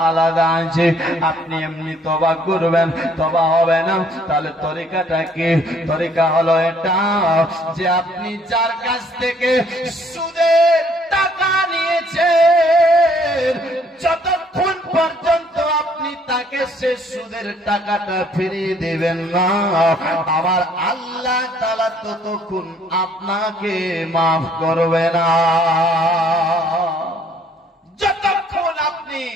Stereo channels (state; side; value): normal; both; correlation 0.62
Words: আলাদা আছে। আপনি এমনি তওবা করবেন, তওবা হবে না, তাহলে তরিকাটা কি? তরিকা হলো এটা যে আপনি যার কাছ থেকে সুদের টাকা নিয়েছেন, যতক্ষণ পর্যন্ত আপনি তাকে সে সুদের টাকাটা ফিরিয়ে দিবেন না, আমার আল্লাহ তাআলা ততক্ষণ আপনাকে মাফ করবে না। যতক্ষণ আপনি